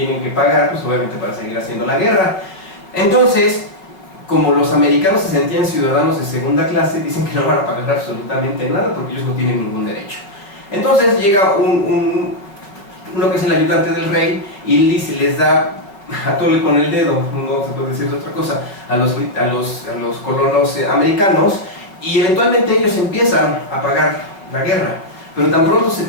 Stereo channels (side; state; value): right; late; 5.3 ms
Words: que pagar, pues obviamente para seguir haciendo la guerra. Entonces, como los americanos se sentían ciudadanos de segunda clase, dicen que no van a pagar absolutamente nada porque ellos no tienen ningún derecho. Entonces llega uno que es el ayudante del rey y les da a tole con el dedo, no se puede decir otra cosa, a los colonos americanos, y eventualmente ellos empiezan a pagar la guerra, pero tan pronto se